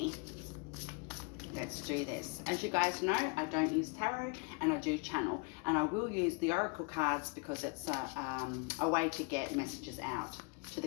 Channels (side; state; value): right; quieter; 31.5 dB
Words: Let's do this. As you guys know, I don't use tarot and I do channel. And I will use the oracle cards because it's a way to get messages out to